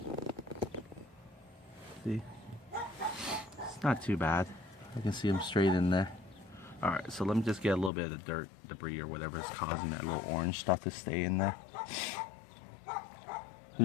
See? It's not too bad. I can see him straight in there. Alright, so let me just get a little bit of the dirt, debris, or whatever is causing that little orange stuff to stay in there. Who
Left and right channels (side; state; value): right; drops out; at 7.9 s